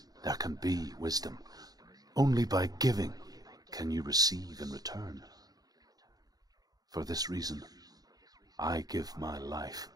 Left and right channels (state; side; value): late; left; 0.19 ms